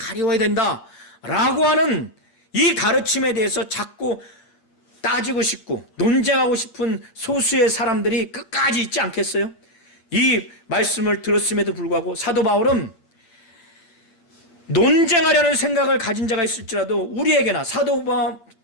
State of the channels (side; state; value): right; late; 8.3 ms